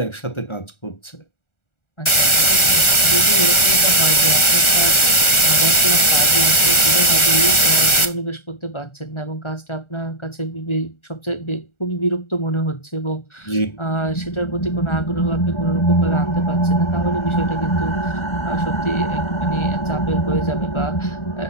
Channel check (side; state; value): right; late; 1.4 ms